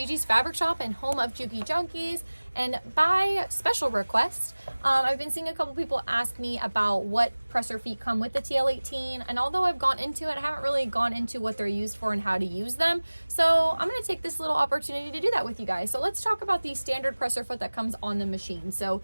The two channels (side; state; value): both; inverted; correlation -1.00